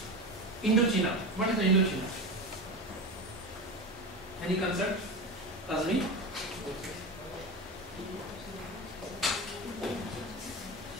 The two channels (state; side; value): normal; both; correlation 0.23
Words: Indochina. What is the Indochina? Any concept? Azmi?